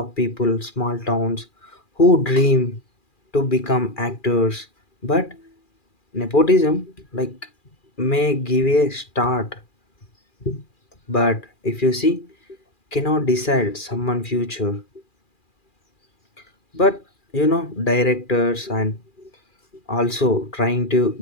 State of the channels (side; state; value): right; late; 2.4 ms